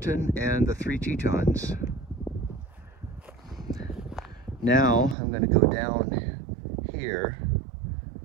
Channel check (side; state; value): left; drops out; at 5.2 s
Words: and the 3 Tetons. Now I'm going to go down here